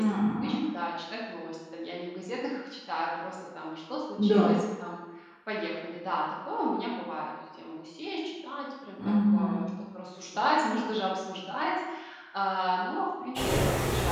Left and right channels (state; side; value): identical; both; correlation 1.00